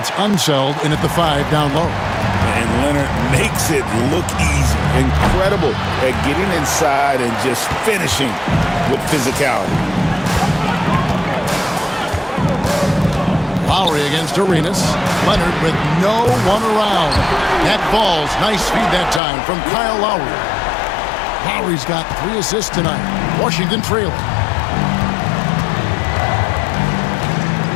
Unseld in at the 5 down low. And Leonard makes it look easy. Incredible at getting inside and just finishing with physicality. Lowry against Arenas. Leonard with no one around. That ball's nice feed that time from Kyle Lowry. Lowry's got 3 assists tonight. Washington trailing.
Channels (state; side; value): drops out; right; at 19.2 s